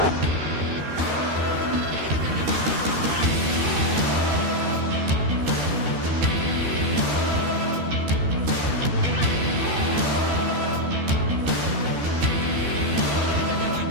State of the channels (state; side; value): late; left; 13 ms